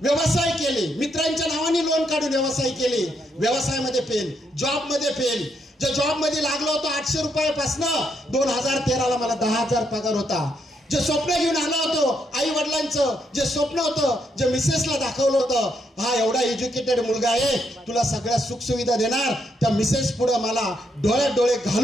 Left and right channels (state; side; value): normal; both; correlation 0.77